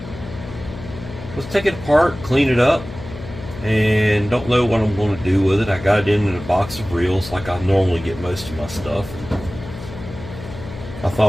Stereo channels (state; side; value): noise; left; hum, 12 dB below the sound